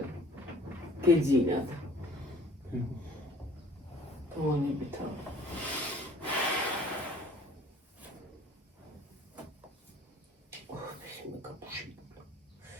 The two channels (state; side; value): normal; both; correlation 0.52